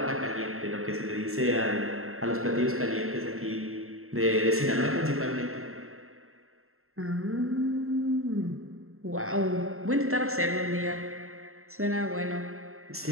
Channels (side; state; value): left; late; 0.62 ms